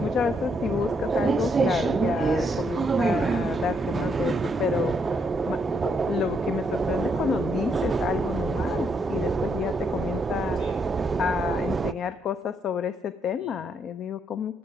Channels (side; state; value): both; normal; correlation 0.75